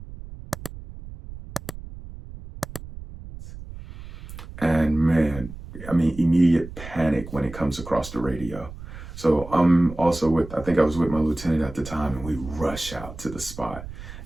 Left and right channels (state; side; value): noise; right; rumble, 13 dB below the sound